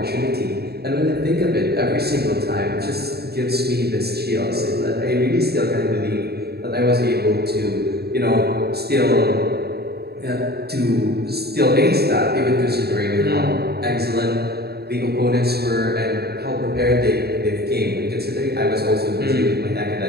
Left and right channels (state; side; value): late; left; 0.46 ms